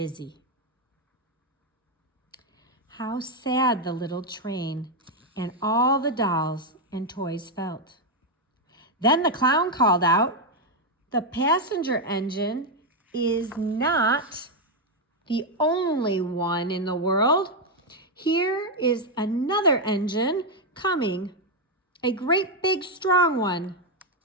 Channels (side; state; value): both; normal; correlation 0.02